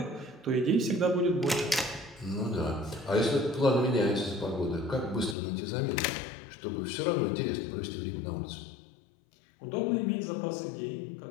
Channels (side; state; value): right; drops out; at 5.4 s